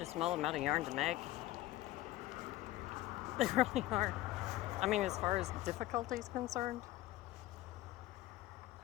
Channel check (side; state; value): right; quieter; 16.7 dB